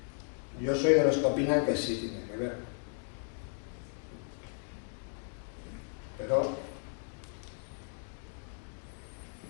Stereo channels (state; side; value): silent; right; 54 dB below the other